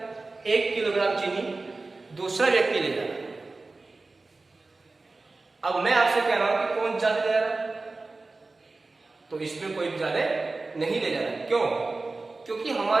1 किलोग्राम चीनी दूसरा व्यक्ति ले जा रहा है। अब मैं आपसे कह रहा हूं कि कौन ज्यादा ले जा रहा है, तो इसमें कोई भी ज्यादा नहीं ले जा रहा है। क्यों? क्योंकि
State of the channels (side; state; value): left; quieter; 3.5 dB